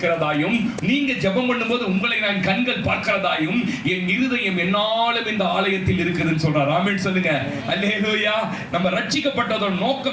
நீங்க ஜெபம் பண்ணும்போது உங்களை நான் கண்கள் பார்க்கிறதாயும் என் இருதயம் என்னாலும் இந்த ஆலயத்தில் இருக்குதுன்னு சொல்றார். ஆமென் சொல்லுங்க. அல்லேலூயா. நம்ம ரட்சிக்கப்பட்டதோட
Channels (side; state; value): both; identical; correlation 1.00